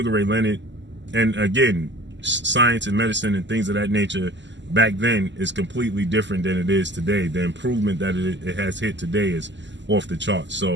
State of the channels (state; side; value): late; left; 0.53 ms